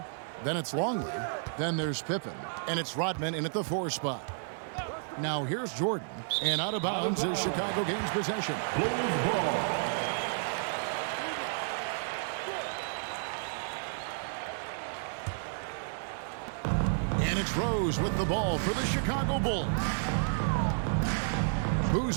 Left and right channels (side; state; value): left; silent; 57 dB below the other